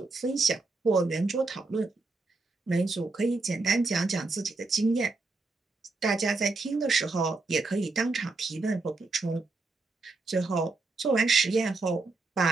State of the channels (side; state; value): left; quieter; 3.6 dB